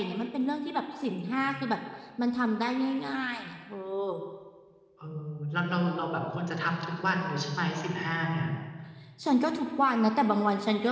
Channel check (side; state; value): both; identical; correlation 1.00